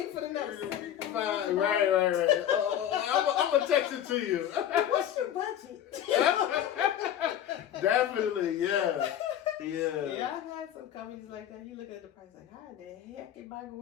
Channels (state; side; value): quieter; right; 10.7 dB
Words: for the next 75. Right. I'm gonna text it to you. What's your budget? Definitely, yeah. Yeah, I've had some companies like that. You look at the price like, how the heck am I